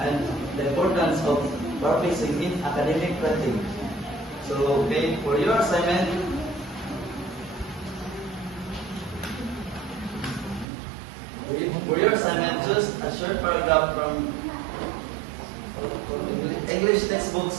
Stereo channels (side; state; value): left; drops out; at 10.7 s